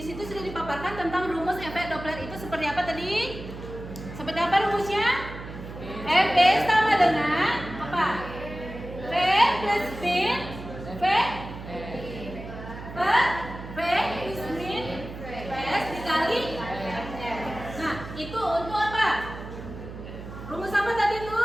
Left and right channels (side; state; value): right; noise; hum, 11 dB below the sound